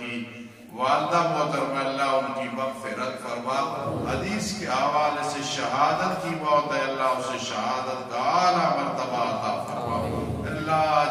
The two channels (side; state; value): both; identical; correlation 1.00